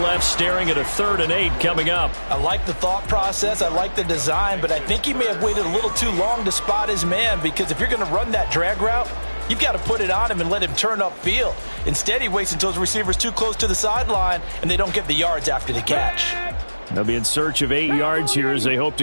left staring at a 3rd and 8 coming up. I like the thought process. I like the design, but I think he may have waited a little too long to spot his man, because if you're going to run that drag route, you've got to put it on him and let him turn upfield. Instead, he waits until his receiver's too close to the sideline, and they don't get the yards after the catch. They'll be in search of 8 yards here as they hope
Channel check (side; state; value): both; inverted; correlation -1.00